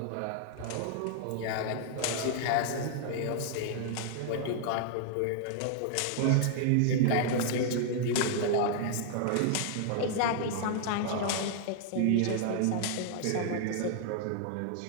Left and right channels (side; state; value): both; different; correlation -0.01